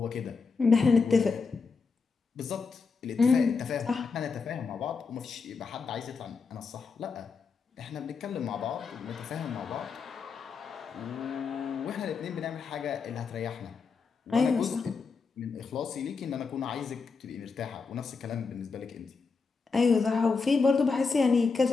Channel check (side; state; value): right; quieter; 4.9 dB